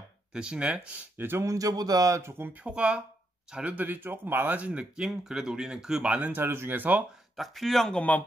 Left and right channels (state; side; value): normal; both; correlation 0.80